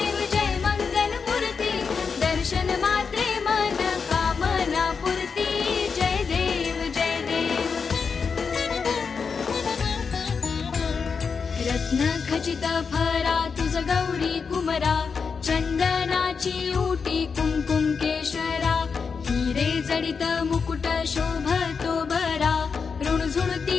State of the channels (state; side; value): quieter; right; 5.5 dB